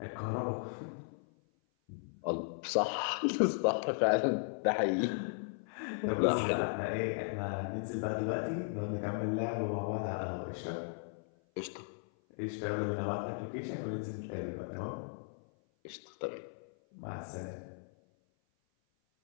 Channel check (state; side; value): silent; right; 54 dB below the other